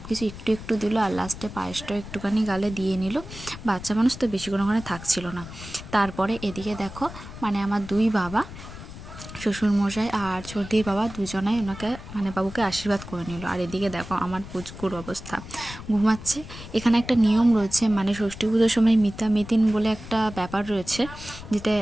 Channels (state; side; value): noise; left; rumble, 13 dB below the sound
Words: কিছু একটু একটু দিল আর লাস্টে পায়েসটাও একটুখানি গালে দিয়ে নিল। বাচ্চা মানুষ তো বেশিক্ষণ ওখানে থাকছিল না। তারপরে এদিকে দেখো আমার দুই বাবা, শ্বশুরমশাই আর ছোটদির বাবা দুজনাই ওনাকে বাবুকে আশীর্বাদ করে নিল। আর এদিকে দেখো আমার পুচকুর অবস্থা, ঘুমাচ্ছে। এখানে একটা নিয়ম রয়েছে, ষষ্ঠী পুজোর সময় মিতামিতিন বলে একটা ব্যাপার রয়েছে, যেটা